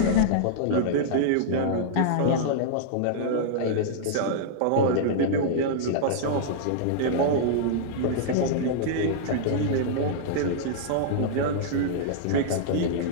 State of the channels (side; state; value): both; different; correlation -0.02